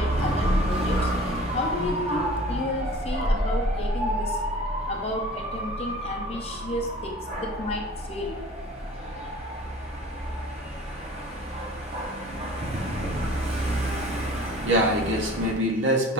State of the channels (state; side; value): normal; both; correlation 0.45